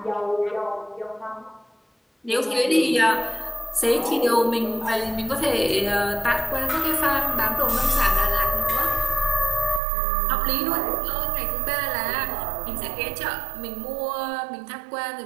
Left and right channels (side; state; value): left; drops out; at 9.8 s